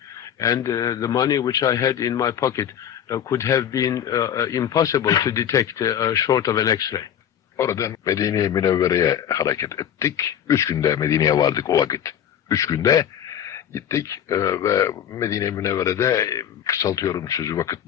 and the money which I had in my pocket could have been impossible to detect short of an X-ray. Oradan Medine-i Münevvere'ye hareket ettik. 3 günde Medine'ye vardık o vakit. 3 günde gittik ve Medine-i Münevvere'de kısaltıyorum sözü vakit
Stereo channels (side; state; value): right; quieter; 9.6 dB